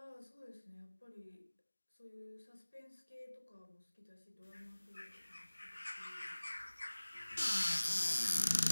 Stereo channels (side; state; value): both; inverted; correlation -1.00